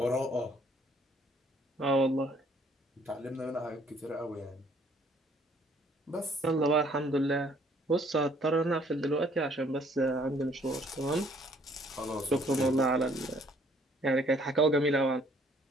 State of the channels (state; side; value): normal; both; correlation 0.61